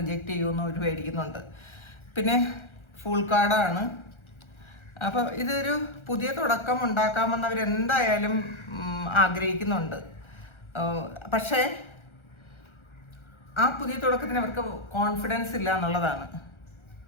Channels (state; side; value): late; right; 1.3 ms